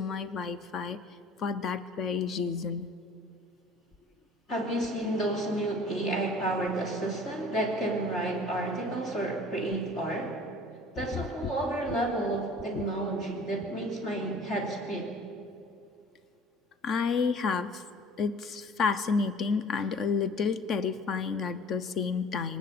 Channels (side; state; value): both; normal; correlation 0.47